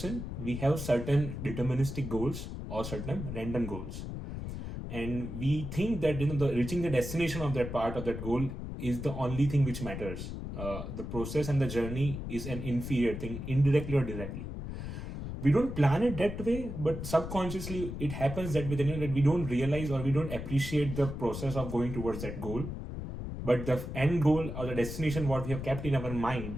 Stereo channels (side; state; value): left; noise; rumble, 7 dB below the sound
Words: we have certain deterministic goals or certain random goals, and we think that the reaching the destination of that part of that goal is the only thing which matters. The process and the journey is an inferior thing, indirectly or directly. We don't plan it that way, but subconsciously it happens that way. That we don't realize or we don't appreciate the process of going towards that goal, but the end goal or the destination what we have kept in our